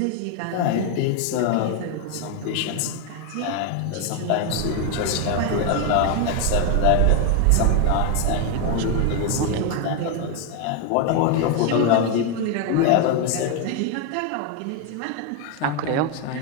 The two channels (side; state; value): both; different; correlation 0.01